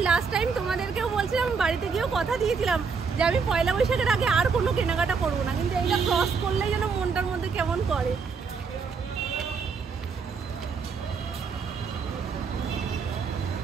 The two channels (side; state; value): left; quieter; 5.3 dB